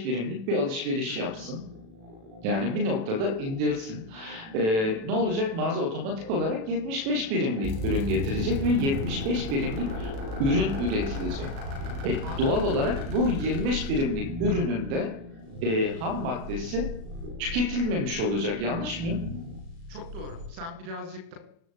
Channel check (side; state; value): left; late; 36 ms